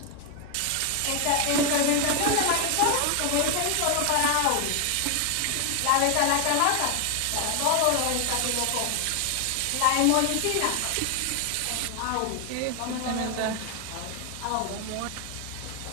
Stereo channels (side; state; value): both; different; correlation 0.01